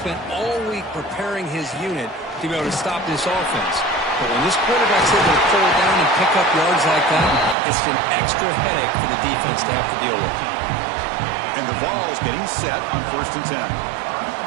all week preparing his unit to be able to stop this offense. But when this quarterback's able to pull down and pick up yards like that, it's an extra headache for the defense to have to deal with. And the Vols getting set on 1st and 10.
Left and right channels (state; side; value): drops out; left; at 7.6 s